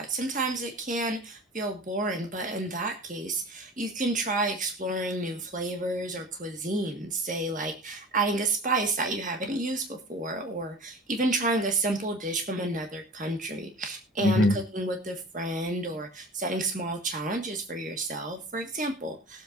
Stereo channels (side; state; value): both; normal; correlation 0.39